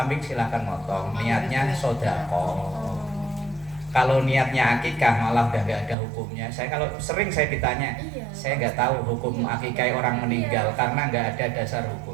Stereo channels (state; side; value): drops out; left; at 6.0 s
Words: silahkan motong, niatnya sodaqoh. Kalau niatnya akikah malah udah nggak ada hukumnya. Kalau sering saya ditanya, saya nggak tahu hukum akikah orang meninggal karena nggak ada dasar